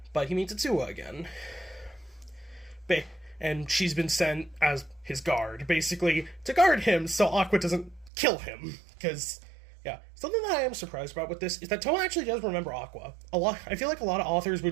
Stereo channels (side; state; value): left; drops out; at 8.1 s